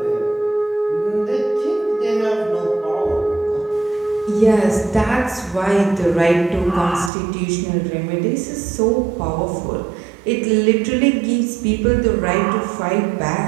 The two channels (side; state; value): left; drops out; at 7.1 s